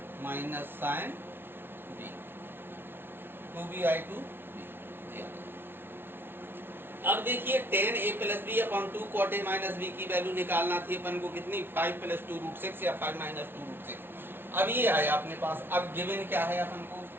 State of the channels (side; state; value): left; late; 0.11 ms